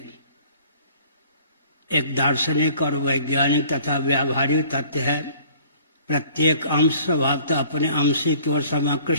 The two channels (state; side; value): inverted; both; correlation -0.53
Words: एक दार्शनिक और वैज्ञानिक तथा व्यावहारिक तथ्य है, प्रत्येक अंश स्वभावतः अपने अंशी की ओर